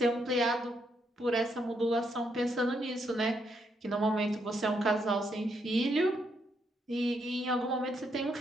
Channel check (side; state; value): both; normal; correlation 0.77